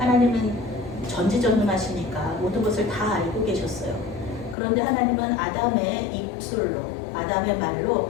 전지전능하시니까 모든 것을 다 알고 계셨어요. 그런데 하나님은 아담의 입술로, 아담의 말로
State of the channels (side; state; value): right; drops out; at 4.5 s